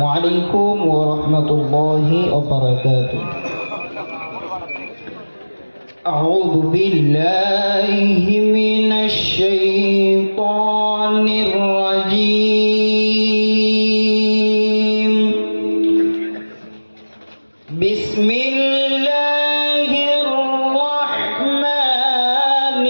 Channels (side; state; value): both; inverted; correlation -1.00